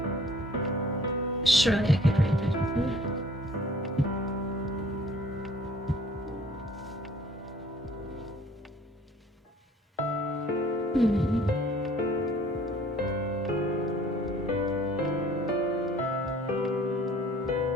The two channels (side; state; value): both; normal; correlation 0.54